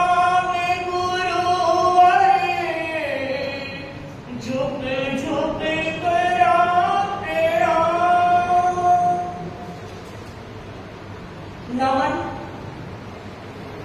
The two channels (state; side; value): identical; both; correlation 1.00